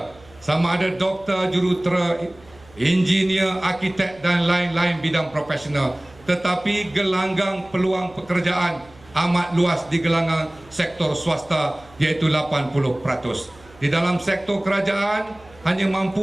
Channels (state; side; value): noise; right; hum, 26 dB below the sound